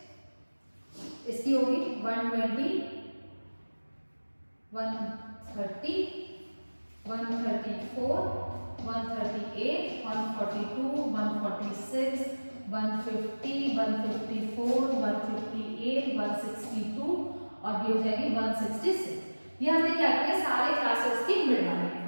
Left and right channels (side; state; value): both; inverted; correlation -1.00